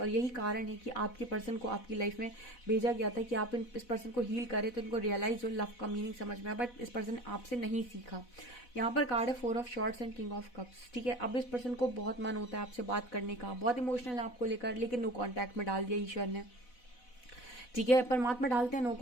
और यही कारण है कि आपके पर्सन को आपकी लाइफ में भेजा गया था कि आप इस पर्सन को हील करें, तो इनको रियलाइज हो, लव का मीनिंग समझ में आया, बट इस पर्सन ने आपसे नहीं सीखा। यहाँ पर कार्ड है 4 of shorts and king of cups, ठीक है। अब इस पर्सन को बहुत मन होता है आपसे बात करने का, बहुत इमोशनल है आपको लेकर, लेकिन नो कांटेक्ट में डाल दिया ईश्वर ने। ठीक है। परमात्मा डालते हैं नो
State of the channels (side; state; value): right; late; 4.1 ms